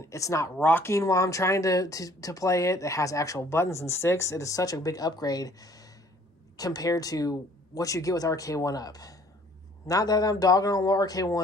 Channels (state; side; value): normal; both; correlation 0.57